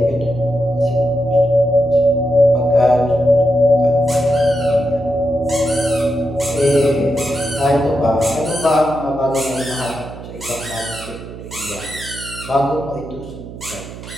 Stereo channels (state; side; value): noise; right; hum, 13 dB below the sound